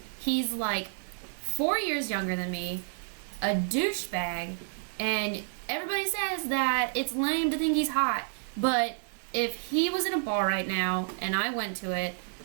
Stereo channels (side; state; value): left; silent; digital silence